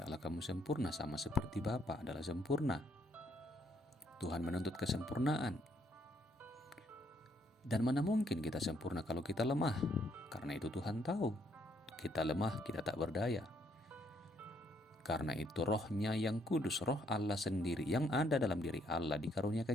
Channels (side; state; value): both; normal; correlation 0.71